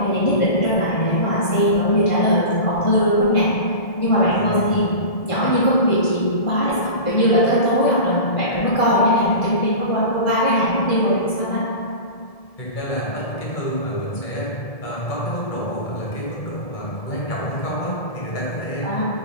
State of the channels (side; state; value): right; late; 1.7 ms